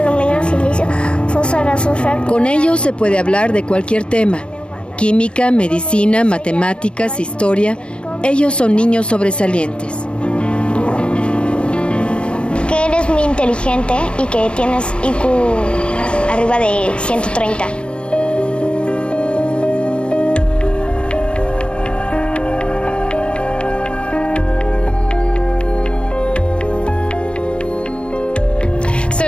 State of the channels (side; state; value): right; late; 0.056 ms